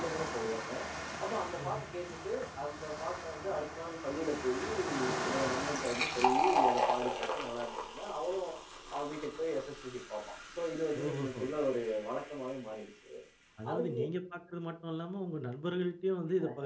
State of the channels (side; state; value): both; identical; correlation 1.00